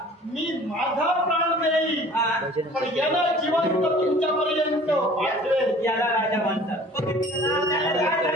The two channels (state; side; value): normal; both; correlation 0.48